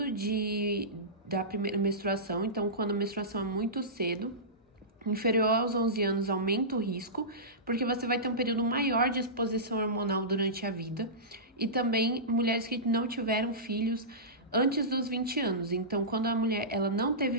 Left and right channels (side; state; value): both; normal; correlation -0.18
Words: da primeira menstruação. Então, quando a menstruação é muito cedo, inferior aos 11 anos, aumenta o risco, porque você vai ter um período maior de exposição hormonal durante a vida. E também mulheres que não tiveram filhos antes dos 20 anos. Então, quando a mulher ela não